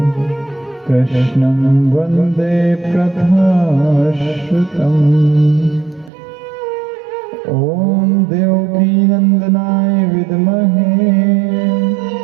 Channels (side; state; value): left; drops out; at 6.1 s